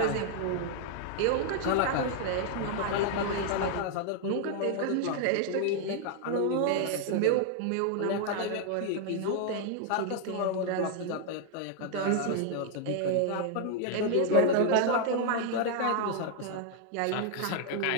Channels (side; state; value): both; different; correlation 0.00